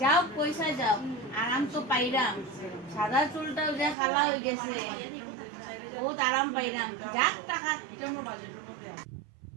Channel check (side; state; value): left; drops out; at 4.0 s